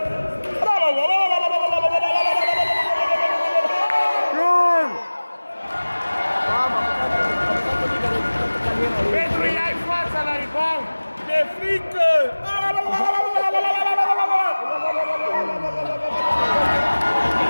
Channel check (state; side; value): inverted; both; correlation -1.00